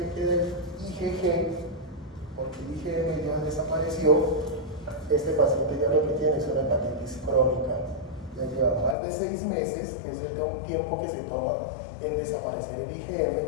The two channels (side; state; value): right; drops out; at 9.0 s